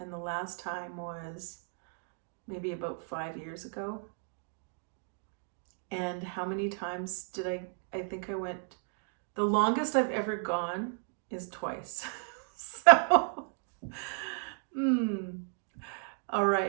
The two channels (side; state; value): left; silent; 55 dB below the other